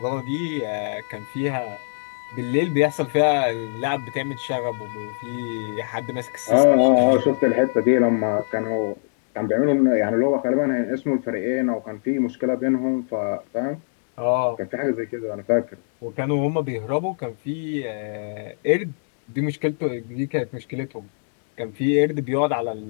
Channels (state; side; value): silent; right; digital silence